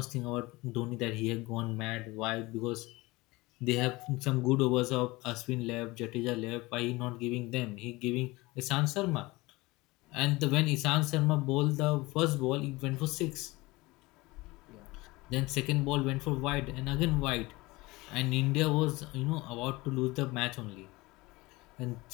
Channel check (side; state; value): right; quieter; 21.8 dB